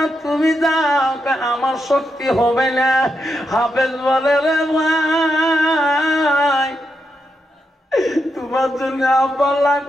তুমি যাও, আমার শক্তি হবে না। হাফেজ বলে, রে ভাই তোমার জন্য আব্বা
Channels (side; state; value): both; normal; correlation 0.84